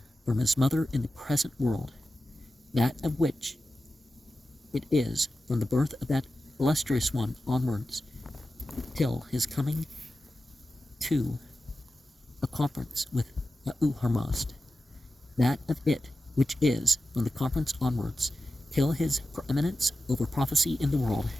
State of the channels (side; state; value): both; normal; correlation 0.93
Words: from his mother in the present world, that of which it is from the birth of that illustrious one onwards, till his coming to a conference with Ahura-Mazda, that of it which is from the conference onwards, till his preeminence over prophecy in the world,